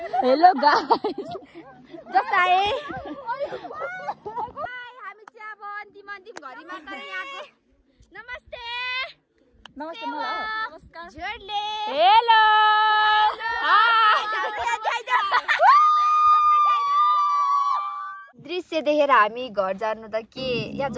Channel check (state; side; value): identical; both; correlation 1.00